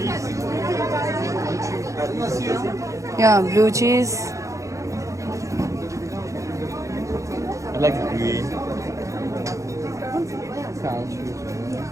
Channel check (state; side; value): late; left; 0.15 ms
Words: Yeah, blue cheese. I like green. Cow cheese.